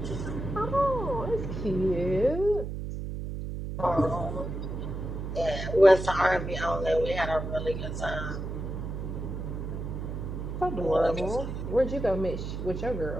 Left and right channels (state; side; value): noise; right; hum, 5 dB below the sound